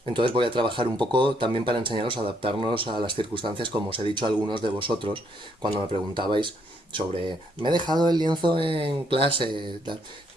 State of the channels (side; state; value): both; normal; correlation 0.72